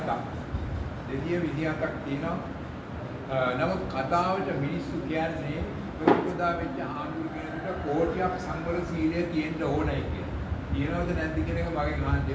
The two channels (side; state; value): both; identical; correlation 1.00